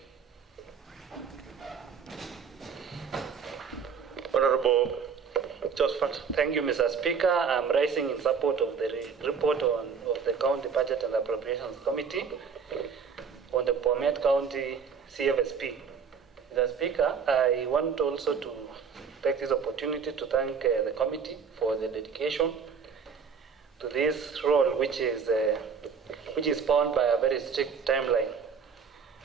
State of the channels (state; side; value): quieter; left; 6.1 dB